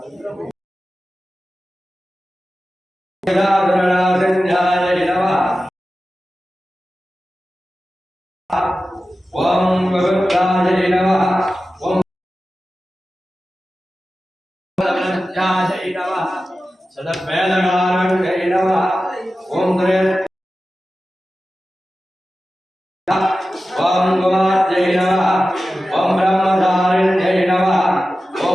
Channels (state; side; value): normal; both; correlation 0.94